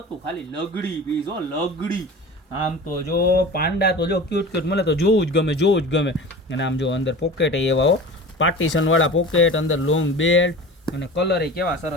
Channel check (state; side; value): normal; both; correlation 0.36